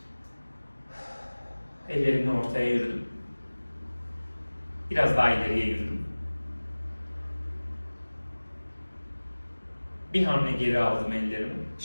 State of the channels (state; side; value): inverted; both; correlation -1.00